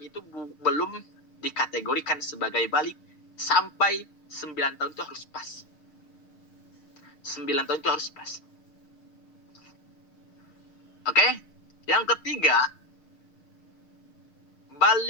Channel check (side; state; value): right; late; 6.6 ms